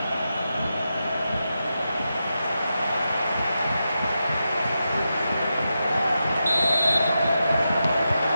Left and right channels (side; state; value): both; inverted; correlation -0.89